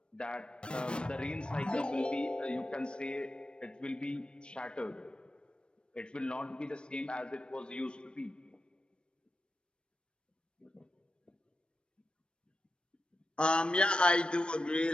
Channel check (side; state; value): right; late; 0.056 ms